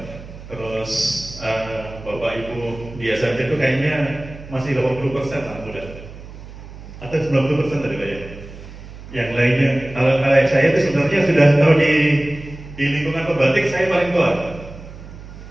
Terus Bapak Ibu di SMC itu kayaknya masih 80% anak muda, atau 90% tadi Pak ya. Yang lainnya, kalau saya itu sebenarnya sudah tahu di lingkungan pembatik saya paling tua,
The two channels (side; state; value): right; noise; hum, 15 dB below the sound